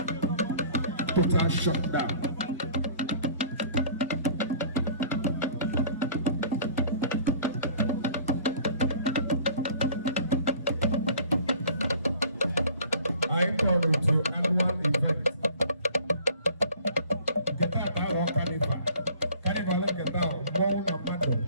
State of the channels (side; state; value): both; inverted; correlation -0.50